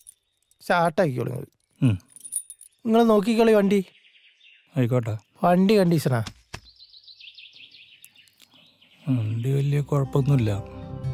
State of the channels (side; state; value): both; identical; correlation 1.00